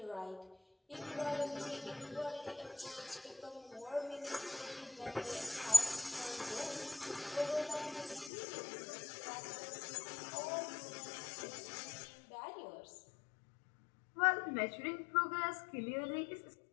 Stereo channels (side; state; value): right; drops out; at 8.3 s